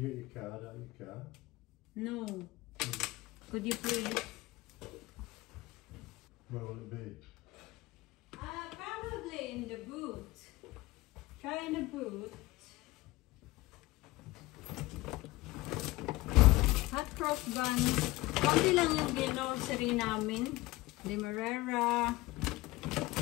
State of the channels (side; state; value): right; quieter; 19.8 dB